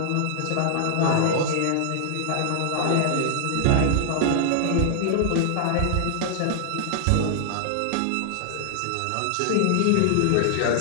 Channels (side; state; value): both; different; correlation 0.00